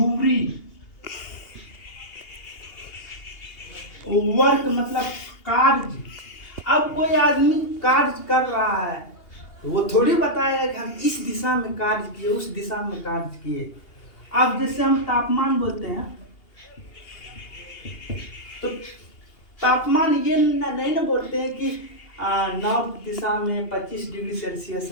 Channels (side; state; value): right; late; 2.8 ms